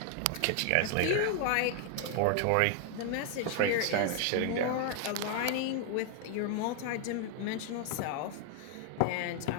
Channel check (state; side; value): different; both; correlation 0.00